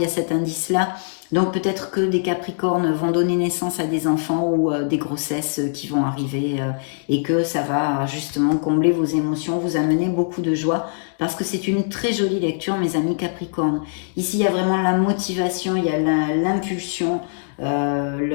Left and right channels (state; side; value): silent; right; digital silence